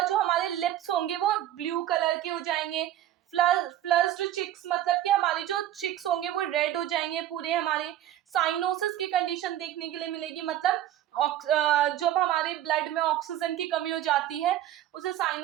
जो हमारे लिप्स होंगे वो ब्लू कलर के हो जाएंगे, फ्लस्ड चिक्स मतलब कि हमारे जो चिक्स होंगे वो रेड हो जाएंगे पूरे हमारे। साइनोसिस की कंडीशन देखने के लिए मिलेगी, मतलब जब हमारे ब्लड में ऑक्सीजन की कमी हो जाती है उसे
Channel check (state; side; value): quieter; left; 12.4 dB